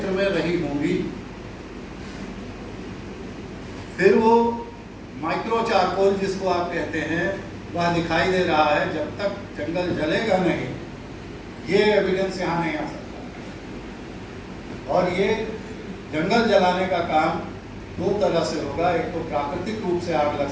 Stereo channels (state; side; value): identical; both; correlation 1.00